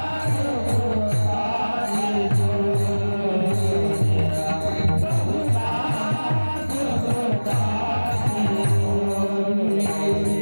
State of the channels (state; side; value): inverted; both; correlation -1.00